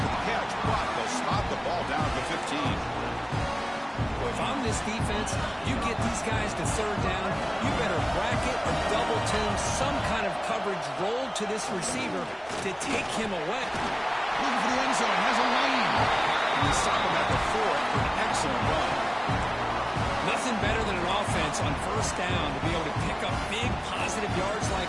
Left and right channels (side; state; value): both; identical; correlation 1.00